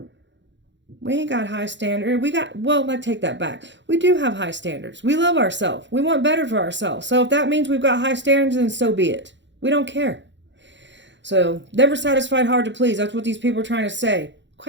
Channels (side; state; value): left; late; 0.53 ms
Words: We ain't got high standards. I take that back. We do have high standards. We love ourselves. We want better for ourselves. So if that means we've got high standards, then so be it. We don't care. So never satisfied, hard to please. That's what these people are trying to say.